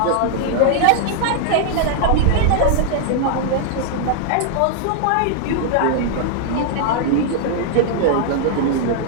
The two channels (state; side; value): different; both; correlation -0.01